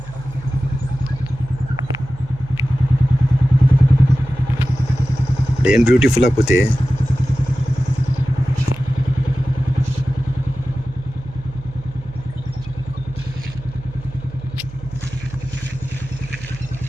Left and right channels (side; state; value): right; noise; hum, 16 dB below the sound